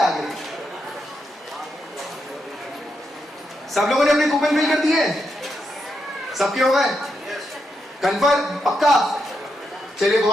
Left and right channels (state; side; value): normal; both; correlation 0.83